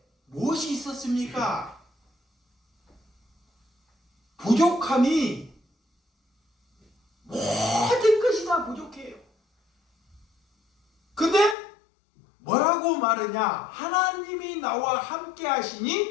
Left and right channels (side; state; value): right; drops out; at 11.6 s